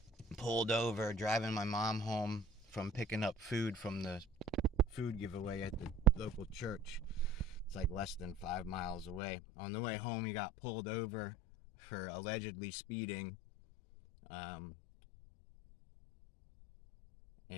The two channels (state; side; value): drops out; right; at 9.2 s